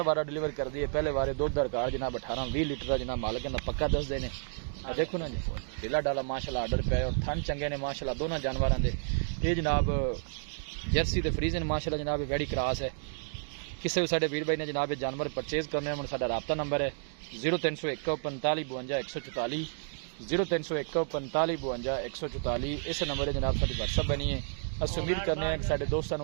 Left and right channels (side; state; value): left; silent; digital silence